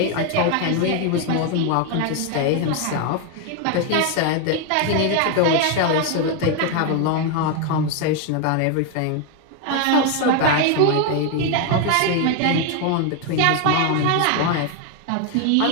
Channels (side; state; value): both; different; correlation 0.01